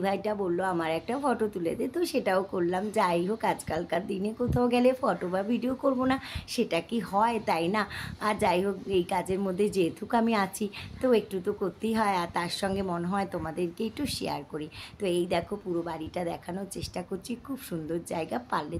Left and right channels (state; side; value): identical; both; correlation 1.00